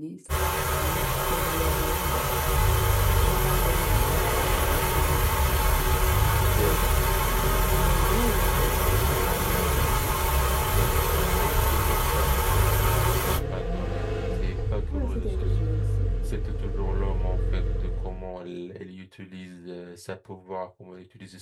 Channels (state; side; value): identical; both; correlation 1.00